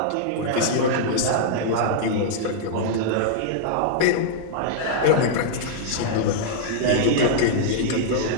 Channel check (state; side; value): different; both; correlation -0.01